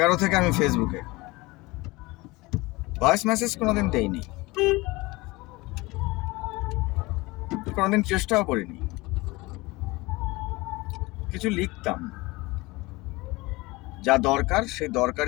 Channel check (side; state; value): right; quieter; 22.4 dB